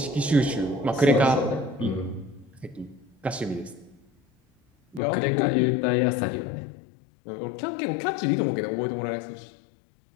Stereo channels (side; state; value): right; drops out; at 5.0 s